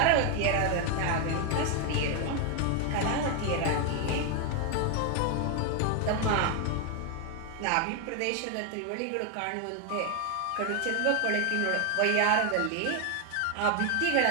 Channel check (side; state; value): both; different; correlation 0.01